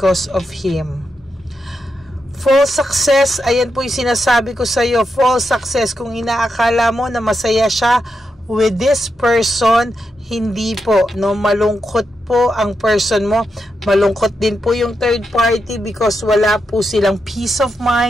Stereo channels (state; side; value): normal; both; correlation 0.85